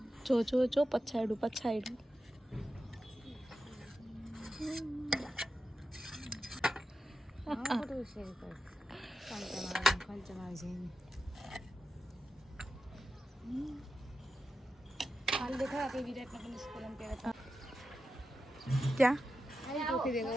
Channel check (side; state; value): both; normal; correlation 0.90